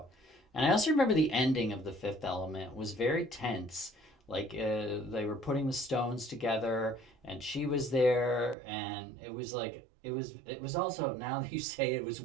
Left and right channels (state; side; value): drops out; left; at 8.6 s